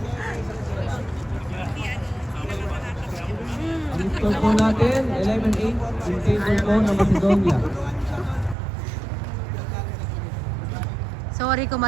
Ang score po natin, 11-8 in favor po ng Macedonia. Sorry kung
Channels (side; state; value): left; drops out; at 8.6 s